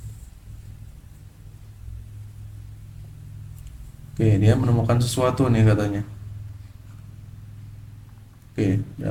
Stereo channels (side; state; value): both; identical; correlation 1.00